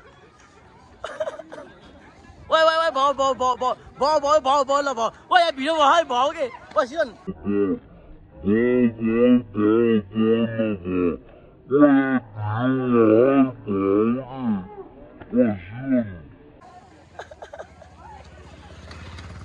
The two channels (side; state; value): both; identical; correlation 1.00